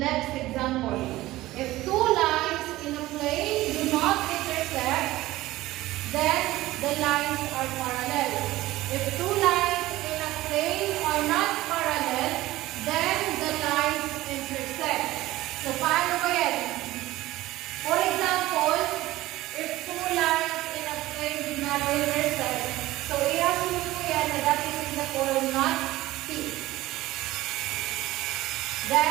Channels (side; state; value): left; quieter; 17.1 dB